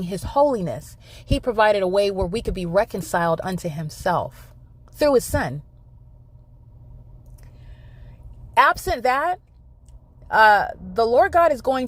his holiness, he provided a way where we could be reconciled unto himself through his son. Absent that, the Lord God is going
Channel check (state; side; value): identical; both; correlation 1.00